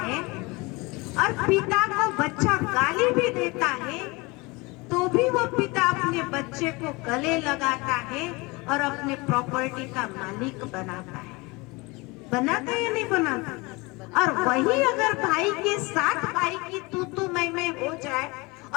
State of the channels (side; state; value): right; quieter; 25.2 dB